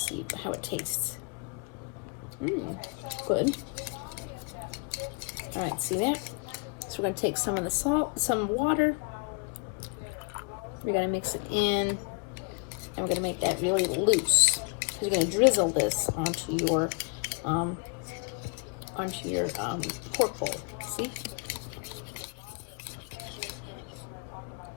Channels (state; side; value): quieter; right; 34.7 dB